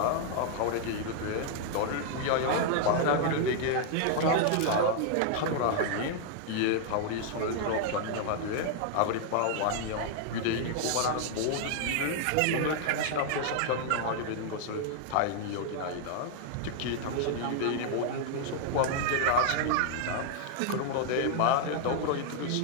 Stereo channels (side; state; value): both; different; correlation 0.00